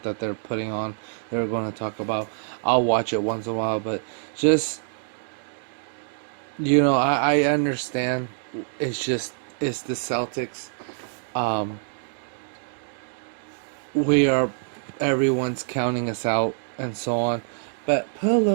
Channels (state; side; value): silent; left; 61 dB below the other